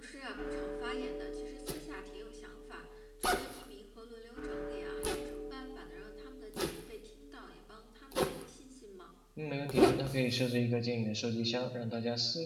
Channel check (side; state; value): both; identical; correlation 1.00